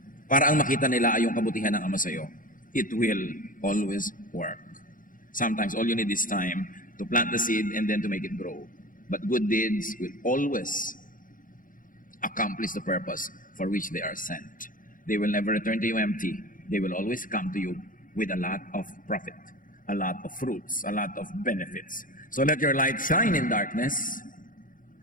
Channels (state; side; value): late; right; 0.39 ms